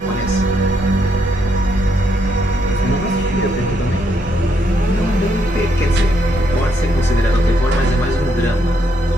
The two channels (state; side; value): normal; both; correlation 0.75